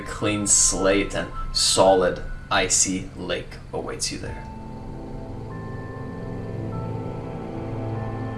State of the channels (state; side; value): identical; both; correlation 1.00